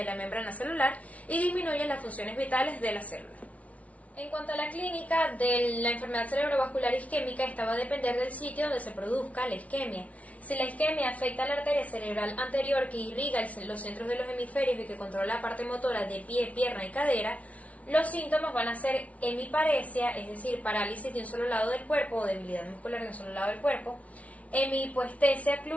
la membrana celular y disminuye las funciones vitales de la célula. En cuanto a la clínica de la enfermedad cerebrovascular isquémica, esta va a depender del sitio donde se produzca la isquemia. Si la isquemia afecta a la arteria cerebral anterior que irriga los centros de los hemisferios y que controla la parte motora de pie, pierna y cadera, los síntomas van a ser hemiparesia, es decir, parálisis de un solo lado del cuerpo o debilidad muscular de un solo lado del cuerpo; hemihipoestesia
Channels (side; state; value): right; late; 0.066 ms